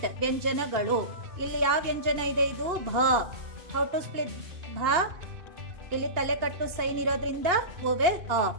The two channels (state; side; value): late; left; 2.8 ms